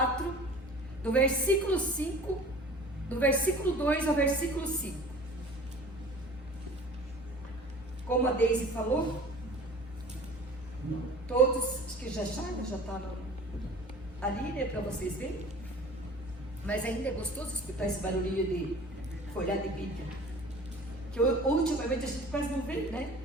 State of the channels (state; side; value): normal; both; correlation 0.44